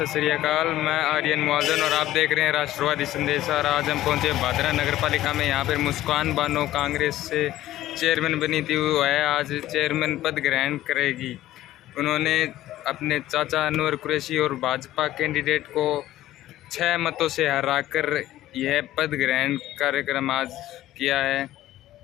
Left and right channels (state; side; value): quieter; right; 14.5 dB